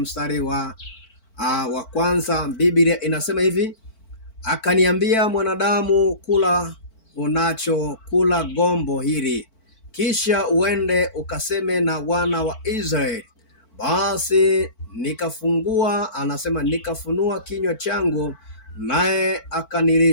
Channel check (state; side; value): late; right; 4.5 ms